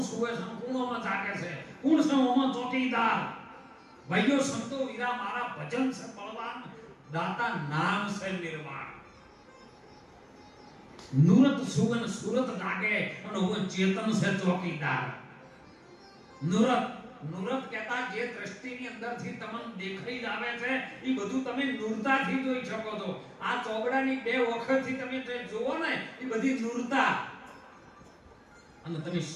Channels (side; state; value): both; identical; correlation 1.00